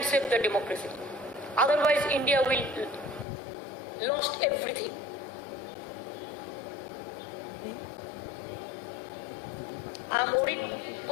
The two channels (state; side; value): drops out; right; at 3.2 s